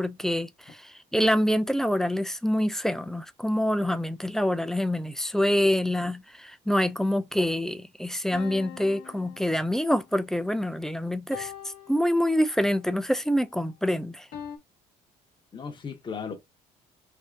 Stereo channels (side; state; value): both; normal; correlation 0.95